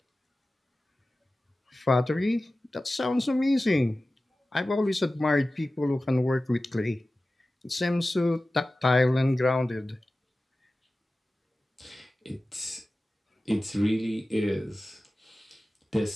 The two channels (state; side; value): normal; both; correlation 0.96